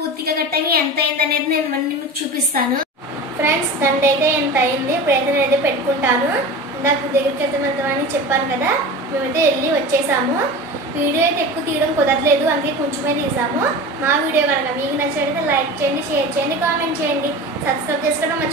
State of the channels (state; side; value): normal; both; correlation 0.31